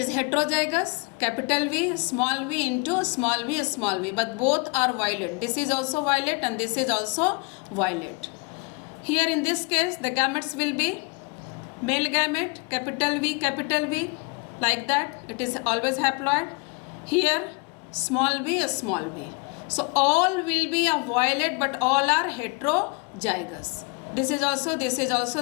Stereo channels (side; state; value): right; quieter; 31.9 dB